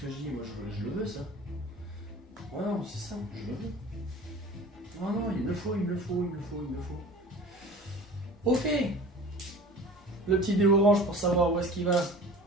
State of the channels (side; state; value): both; normal; correlation 0.41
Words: que je dis? Moi, je le veux, ça. Ouais, non, c'est ça, je le veux. Non, non, il me le faut, il me le faut, il me le faut, il me le faut. Ok. Le petit dé orange pour savoir où est-ce qu'il va.